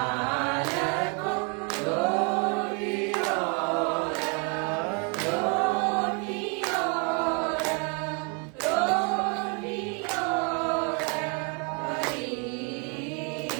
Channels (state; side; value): quieter; left; 35.6 dB